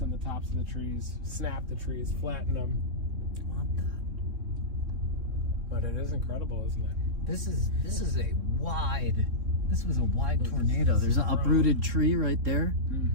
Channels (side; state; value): left; late; 3.7 ms